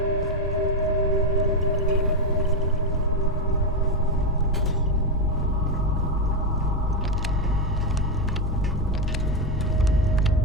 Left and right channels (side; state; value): both; normal; correlation 0.08